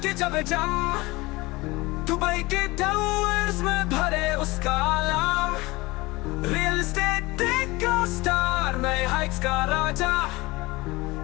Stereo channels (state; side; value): quieter; right; 22.1 dB